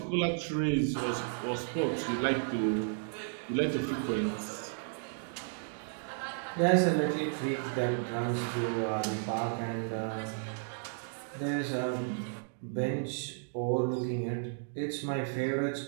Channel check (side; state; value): left; silent; digital silence